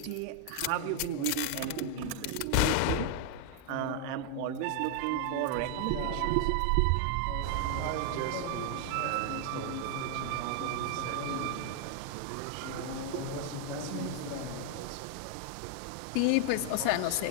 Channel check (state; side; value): different; both; correlation 0.00